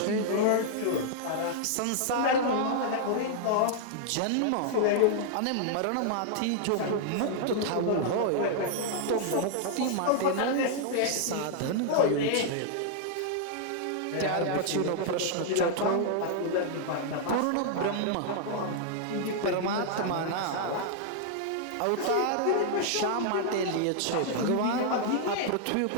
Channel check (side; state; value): both; different; correlation -0.01